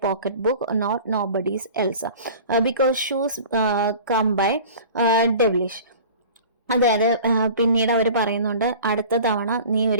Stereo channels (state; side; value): inverted; both; correlation -0.42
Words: pocketbook, not nobody's else, because shoes come by devilish. അതായത് പിന്നീട് അവർ പറയുന്നുണ്ട്, അടുത്ത തവണ നീ